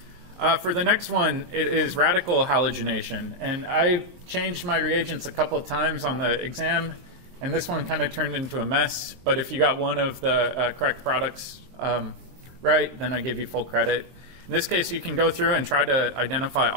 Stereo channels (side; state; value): left; late; 23 ms